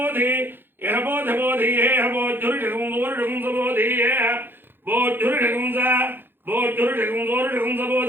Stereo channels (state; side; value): late; left; 0.10 ms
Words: యహ బోధ బోధి హేహ బోధురుషగం వరుషగం బోధి హేహ బోధురుషగం బోధురుషగం వరుషగం